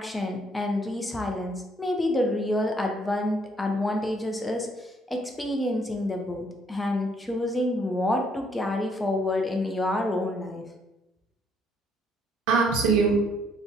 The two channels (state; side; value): normal; both; correlation 0.67